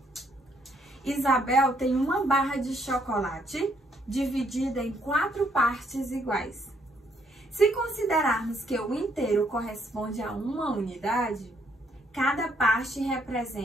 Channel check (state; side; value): normal; both; correlation 0.70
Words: Isabel tem uma barra de chocolate dividida em 4 partes iguais. Se considerarmos que o inteiro corresponde a uma unidade, cada parte